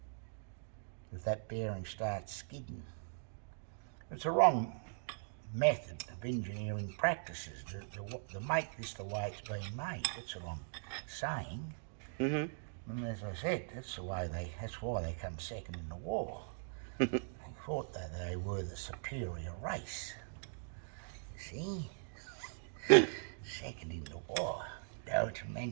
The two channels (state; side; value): silent; left; digital silence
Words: if that bearing starts skidding. It's a wrong method of engineering practices to make this the way it's been made. That's what I'm saying. And as I said, that's why they come second in the war. They thought that they were the superior race. See? Second in the war. Don't